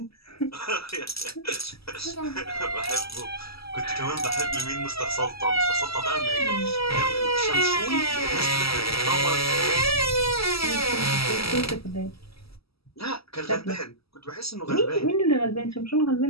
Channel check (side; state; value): right; late; 0.76 ms